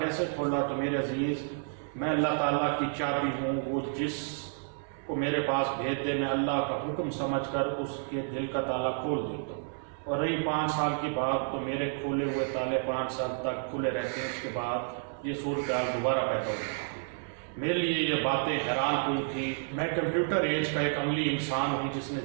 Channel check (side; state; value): left; silent; 57 dB below the other